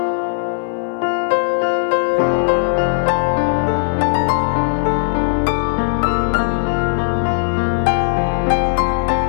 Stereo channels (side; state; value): right; silent; 68 dB below the other